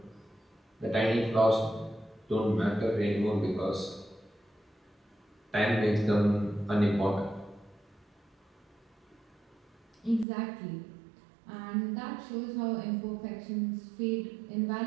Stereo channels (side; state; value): left; drops out; at 10.2 s